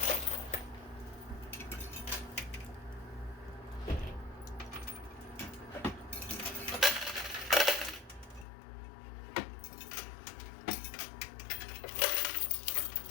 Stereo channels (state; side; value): drops out; right; at 8.5 s